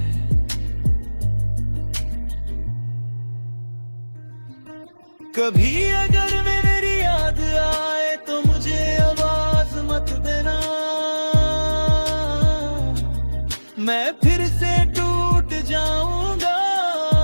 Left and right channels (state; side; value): inverted; both; correlation -1.00